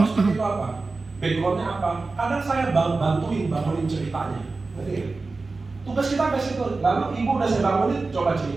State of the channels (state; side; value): quieter; left; 3.8 dB